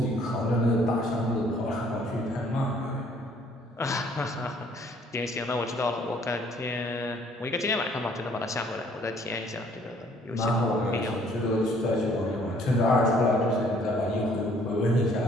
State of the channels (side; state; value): both; normal; correlation 0.61